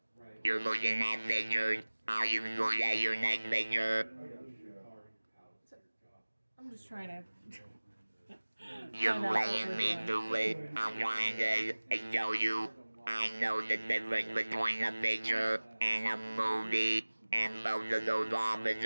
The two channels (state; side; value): inverted; both; correlation -1.00